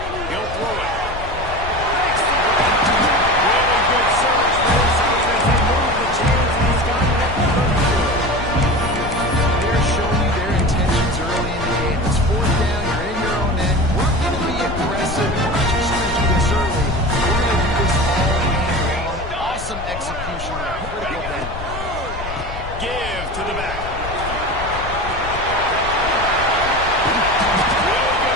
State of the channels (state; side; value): noise; left; rumble, 10 dB below the sound